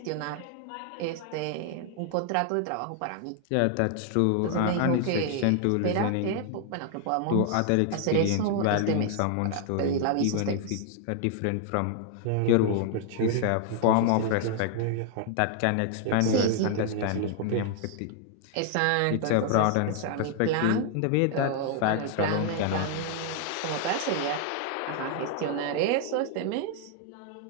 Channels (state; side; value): different; both; correlation 0.00